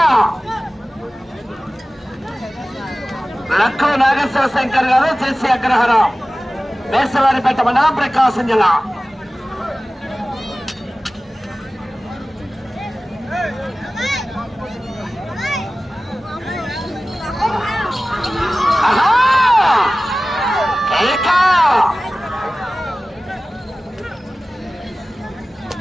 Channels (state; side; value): normal; both; correlation 0.97